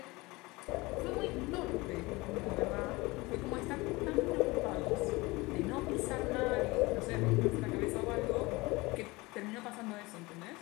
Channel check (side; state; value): right; quieter; 22.7 dB